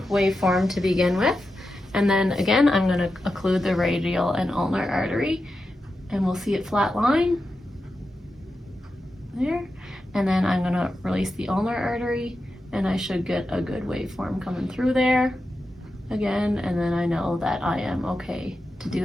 waveform to begin with. And then again, I'm going to occlude the radial and ulnar artery, and we'll see it flat line there. And then I'm going to release the ulnar artery, and I should get a good waveform coming through there again. And then I know that I am okay to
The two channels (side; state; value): both; normal; correlation 0.90